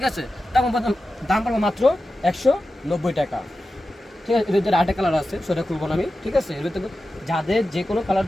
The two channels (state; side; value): normal; both; correlation 0.93